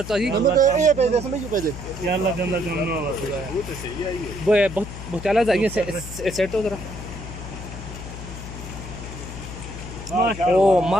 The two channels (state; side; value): noise; left; hum, 10 dB below the sound